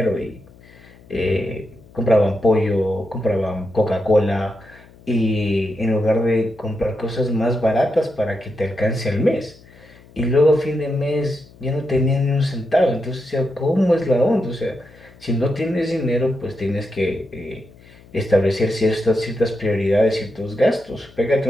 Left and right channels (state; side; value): noise; left; hum, 24 dB below the sound